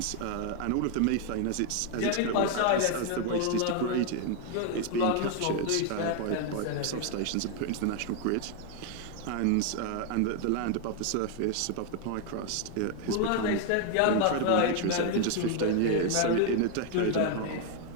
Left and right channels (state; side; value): different; both; correlation 0.00